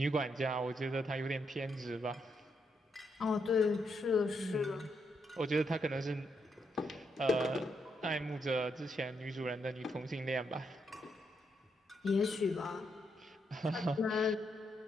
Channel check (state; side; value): normal; both; correlation 0.79